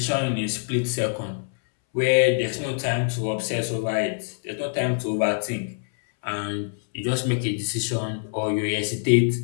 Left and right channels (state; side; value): silent; right; 62 dB below the other